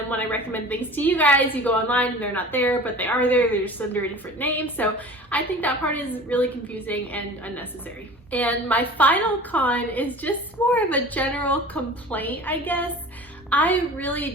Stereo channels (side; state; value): both; normal; correlation 0.40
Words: when I recommend things to you guys, you go online and they're not there, but they are there. They're just under a different name. So I think that part is really confusing and unnecessary. And my final con is just more of a general complaint, I guess. I really